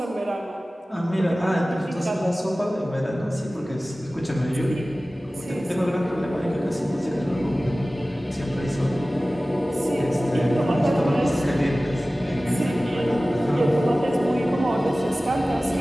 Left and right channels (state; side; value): normal; both; correlation 0.97